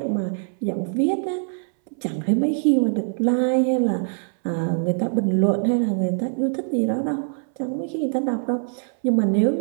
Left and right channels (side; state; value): left; silent; 63 dB below the other